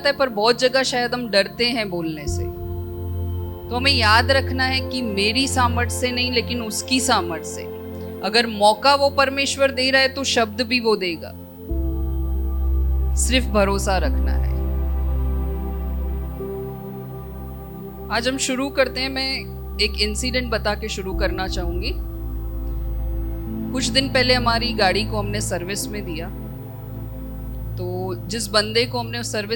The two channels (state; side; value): identical; both; correlation 1.00